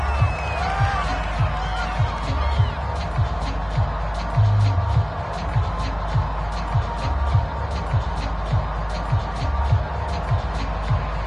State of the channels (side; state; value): both; identical; correlation 1.00